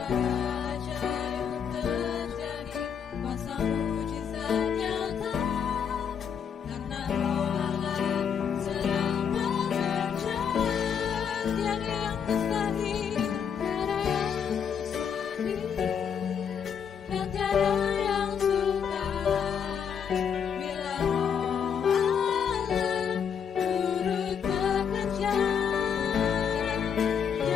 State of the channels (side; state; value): right; quieter; 7.4 dB